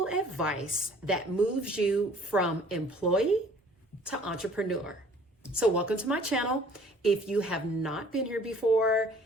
advice that moves you from employee to entrepreneur. So welcome to my channel. If you have not been here before,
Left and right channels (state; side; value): normal; both; correlation 0.53